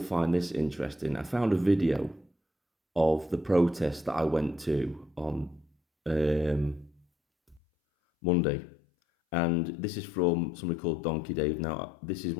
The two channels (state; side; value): drops out; right; at 7.6 s